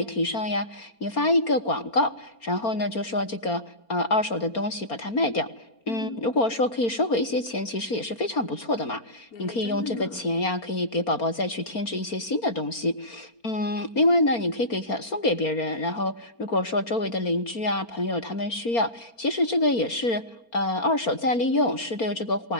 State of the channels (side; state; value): right; late; 4.4 ms